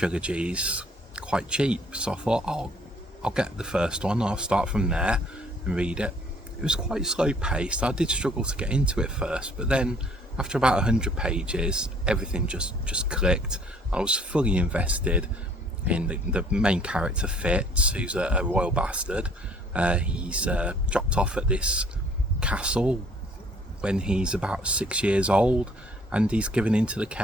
quite cheap, so I thought, I'll get the first one, I'll start from there and read it. It was quite slow paced. I did struggle to get into it first, but then after about 100 pages everything just clicked. I was fully invested in the main character, Fitz, who's a royal bastard. He's dropped off at this castle when he's about 6 years old, and he's given into the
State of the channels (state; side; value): normal; both; correlation 0.59